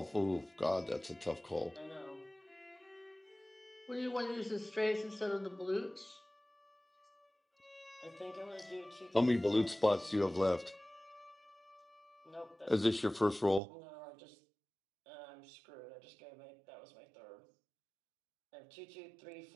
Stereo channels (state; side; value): drops out; left; at 13.6 s